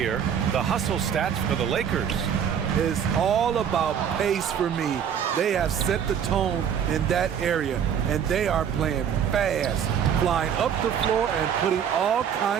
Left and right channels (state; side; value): quieter; left; 8.3 dB